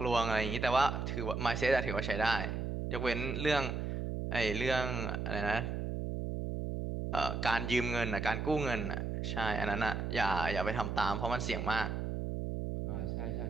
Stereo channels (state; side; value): noise; right; hum, 2 dB below the sound